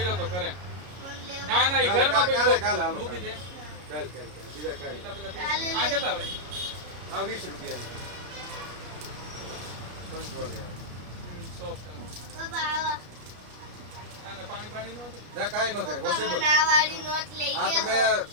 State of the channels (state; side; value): late; left; 33 ms